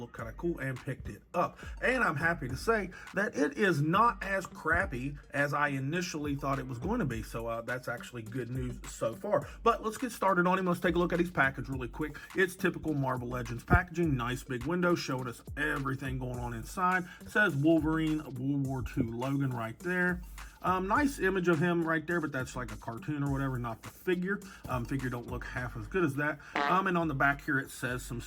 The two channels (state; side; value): identical; both; correlation 1.00